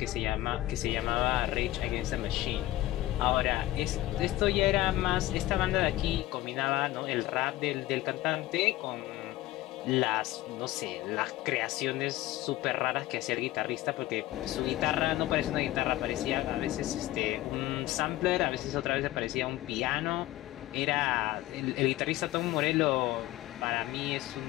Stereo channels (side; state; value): right; quieter; 16.1 dB